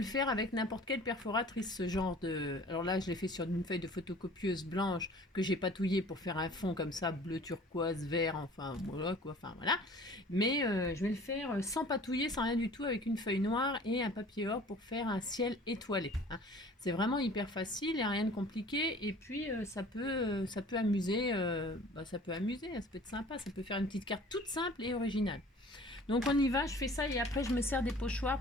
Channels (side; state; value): both; normal; correlation 0.47